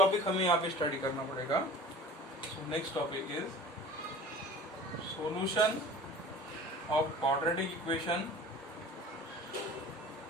हमें यहाँ पे स्टडी करना पड़ेगा. So next topic is solution of quadratic equation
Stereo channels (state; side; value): normal; both; correlation 0.41